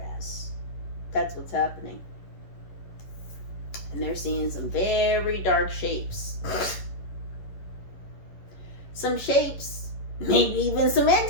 ass. That's what's happening. And they're seeing some very dark shapes. Some shapes, maybe even some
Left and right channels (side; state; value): right; late; 11 ms